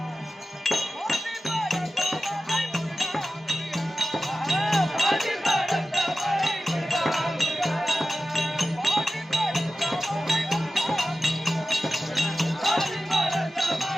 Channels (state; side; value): normal; both; correlation 0.93